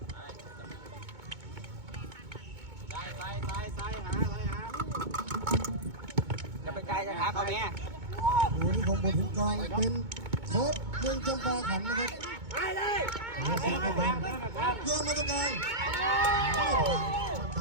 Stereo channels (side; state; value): left; late; 2.2 ms